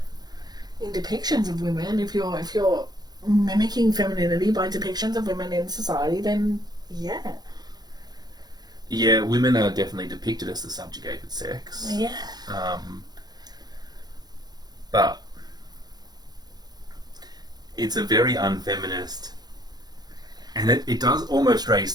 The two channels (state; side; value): late; left; 0.19 ms